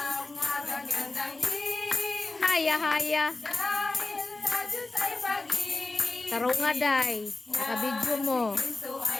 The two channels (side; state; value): right; quieter; 3.3 dB